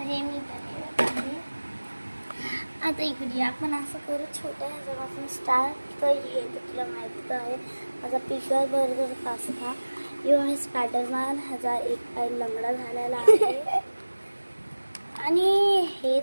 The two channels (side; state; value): both; inverted; correlation -1.00